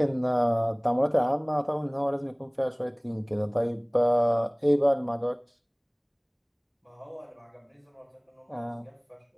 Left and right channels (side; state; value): both; identical; correlation 1.00